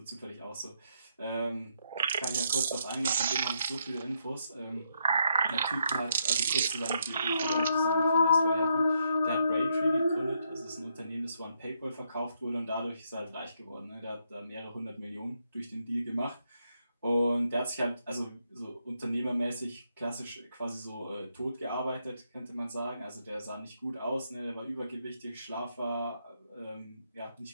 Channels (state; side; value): inverted; both; correlation -0.77